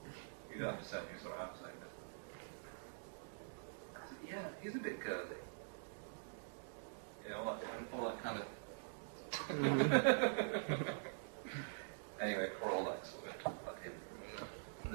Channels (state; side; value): silent; left; digital silence